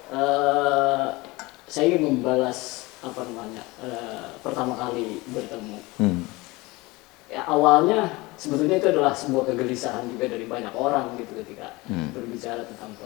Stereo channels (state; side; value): quieter; right; 22.6 dB